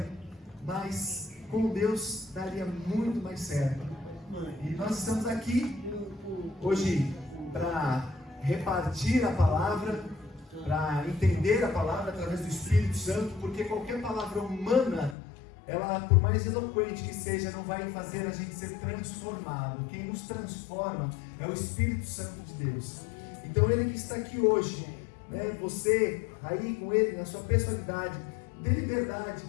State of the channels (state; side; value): drops out; right; at 15.2 s